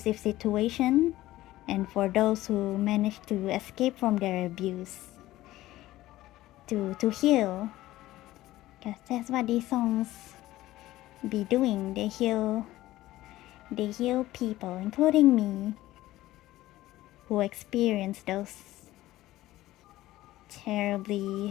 situation, and for those who manage to escape from their abuse, to heal, because that's what these songs be doing. They heal people, including me, who experience those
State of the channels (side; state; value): right; quieter; 16.0 dB